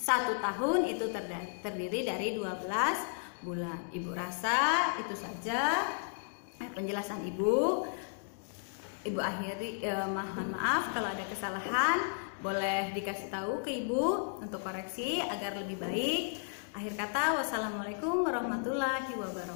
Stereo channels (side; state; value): right; silent; digital silence